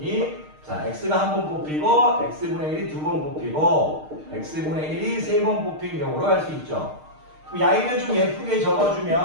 자, x가 1번 뽑히고 x분의 1이 2번 뽑히고 x분의 1이 3번 뽑힌 경우로 할 수 있죠. 그럼 야이를 좀 예쁘게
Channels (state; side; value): late; left; 6.5 ms